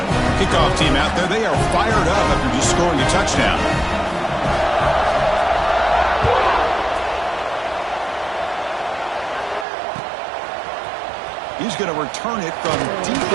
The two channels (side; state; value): left; drops out; at 9.7 s